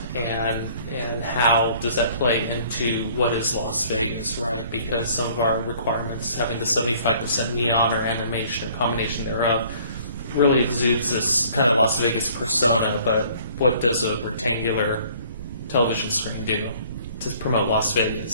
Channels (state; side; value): inverted; both; correlation -0.55